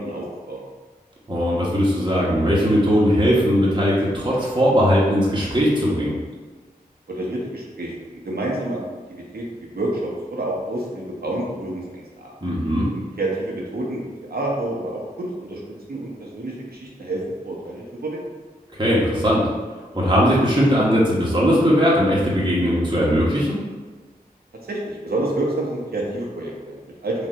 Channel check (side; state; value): both; normal; correlation 0.75